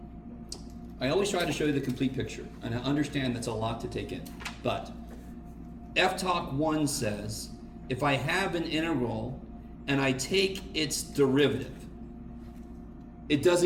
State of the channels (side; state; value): both; identical; correlation 1.00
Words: I always try to show you the complete picture, and I understand that's a lot to take in. But FTOC 1 says, if I have an integral and I take its derivative, it